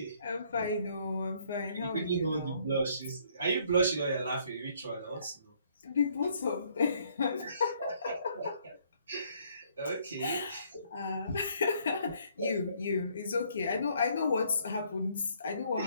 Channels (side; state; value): both; inverted; correlation -0.66